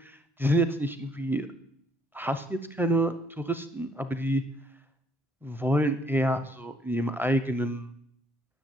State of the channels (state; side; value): normal; both; correlation 0.66